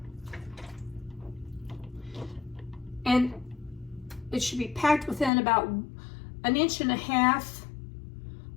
And it should be packed within about 1.5 inches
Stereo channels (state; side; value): drops out; right; at 5.3 s